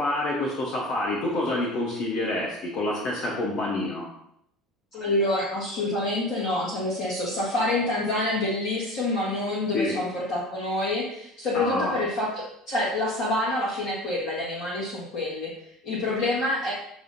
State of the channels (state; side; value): normal; both; correlation 0.34